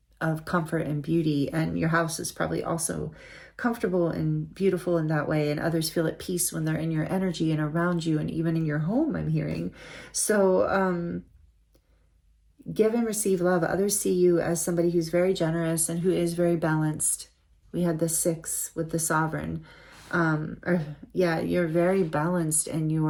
comfort and beauty. And your house is probably also comfortable and beautiful in that way, and others feel at peace when they're in your energy and around you, and even in your home, I'm hearing. So give and receive love. Others see you as somebody who's very generous and who is very balanced. We had the 6 with the sovereign. You're very balanced in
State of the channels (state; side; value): identical; both; correlation 1.00